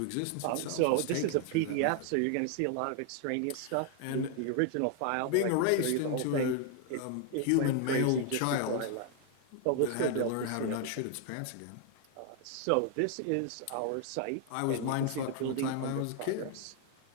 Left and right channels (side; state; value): both; different; correlation 0.00